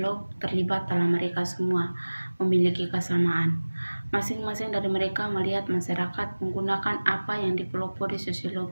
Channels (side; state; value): both; inverted; correlation -1.00